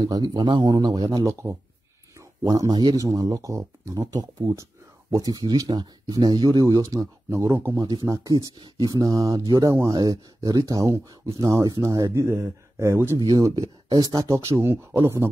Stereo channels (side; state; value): both; normal; correlation 0.95